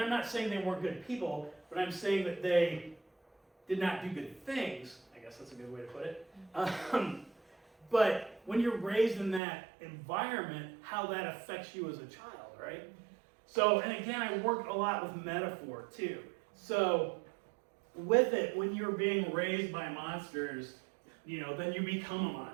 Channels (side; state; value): left; drops out; at 9.4 s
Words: not saying they weren't good people, but I'm saying that they did not do good things. I guess that's a good way to put it. But when you're raised in that environment, how that affects you as a child, right? So, and again, I worked a lot with metaphor too. So, with it, when you're being raised by monsters, then you become a